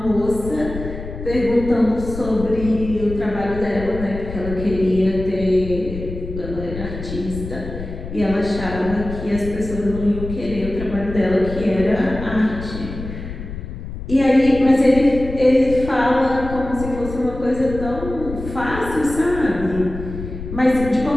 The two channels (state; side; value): noise; left; rumble, 9 dB below the sound